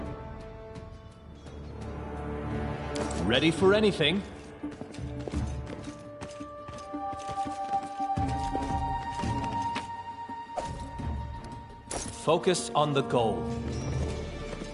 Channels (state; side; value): identical; both; correlation 1.00